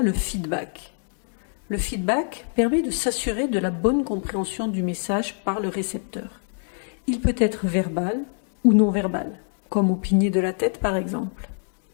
le feedback. Le feedback permet de s'assurer de la bonne compréhension du message par le récepteur. Il peut être verbal ou non verbal, comme opiner de la tête par exemple.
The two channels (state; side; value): silent; right; 55 dB below the other